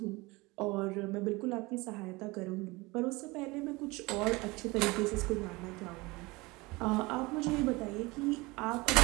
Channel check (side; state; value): left; quieter; 23.4 dB